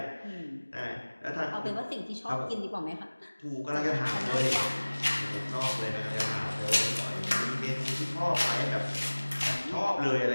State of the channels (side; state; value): both; inverted; correlation -1.00